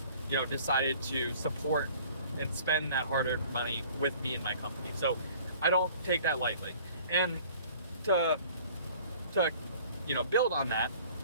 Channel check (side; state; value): both; inverted; correlation -0.51